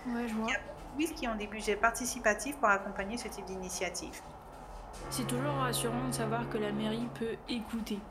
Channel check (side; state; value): both; identical; correlation 1.00